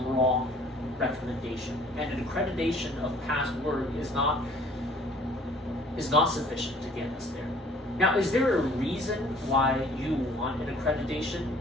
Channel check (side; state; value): both; normal; correlation 0.55